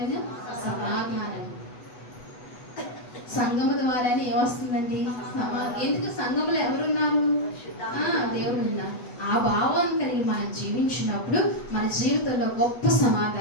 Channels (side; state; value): right; late; 8.1 ms